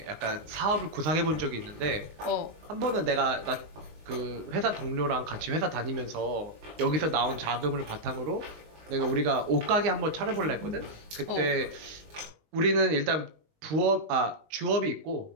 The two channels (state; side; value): late; left; 19 ms